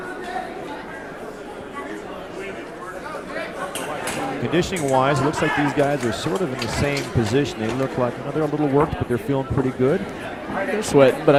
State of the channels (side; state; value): both; identical; correlation 1.00